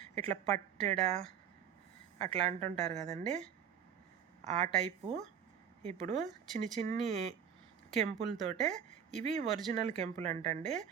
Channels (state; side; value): quieter; left; 8.3 dB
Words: ఇట్లా పట్టెడ అట్లా అంటుంటారు కదండి, ఆ టైపు. ఇప్పుడు చిన్ని కెంపులతోటే ఇవి ఒరిజినల్ కెంపులు అంటండి.